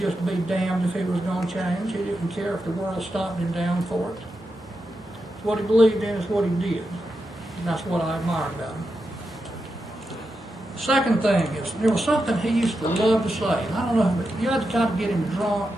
be damned if he was going to change. He didn't care if the world stomped him down for it. What he believed in is what he did. And that's what I admired about him. Second thing is, there was something he used to love to say. And I don't know, but you had to kind of get him drunk,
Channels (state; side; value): normal; both; correlation 0.87